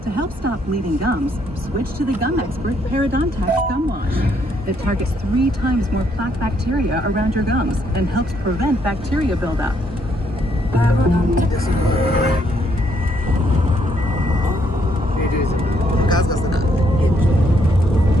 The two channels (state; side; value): normal; both; correlation 0.71